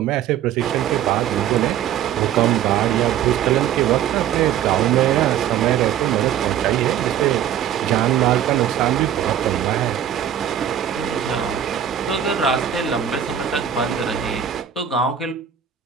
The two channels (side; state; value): left; quieter; 9.8 dB